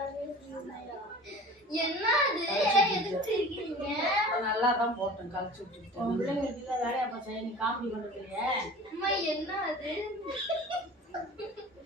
என்ன எதுக்கு இருக்கீங்க? நல்லா தான் போட்டேன் கழிச்சு விட்டுட்டேன். பிள்ளைங்க வீட்டுல வேலையா போச்சா? நீ காமெடி பண்றதுலையே அம்மா என்ன அது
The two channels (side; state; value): both; normal; correlation 0.40